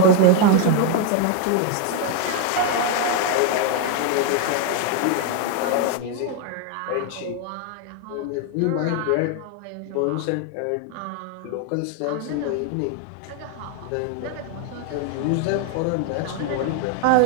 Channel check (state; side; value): different; both; correlation 0.01